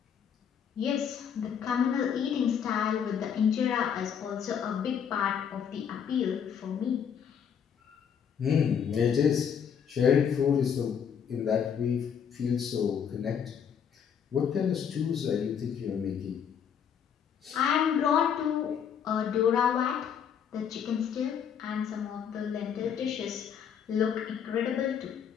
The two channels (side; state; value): right; quieter; 7.8 dB